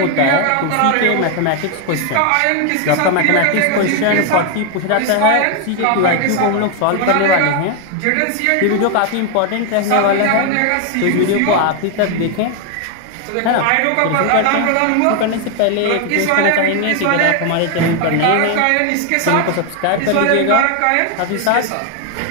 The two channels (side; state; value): both; different; correlation 0.01